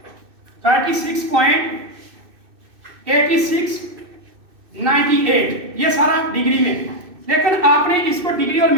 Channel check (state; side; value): late; left; 2.6 ms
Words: ये सारा डिग्री में। लेकिन आपने इसको डिग्री और